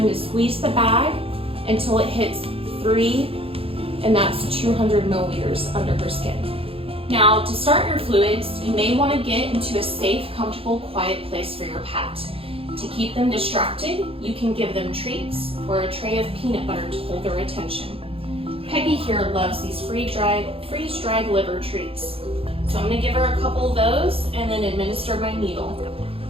to squeeze the bag until it hits 3, and that's 200 milliliters under her skin. Now, to start your fluids, you may want to get into a safe, comfortable, quiet place for your pet. To keep them distracted, you can give them treats or a tray of peanut butter to hold their attention. Peggy here loves these freeze-dried liver treats. So I'm going to give her a couple of those and then administer my needle.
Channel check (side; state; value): left; late; 0.27 ms